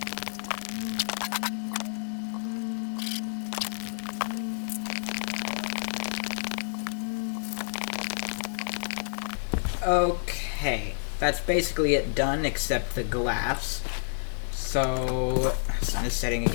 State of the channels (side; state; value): right; silent; digital silence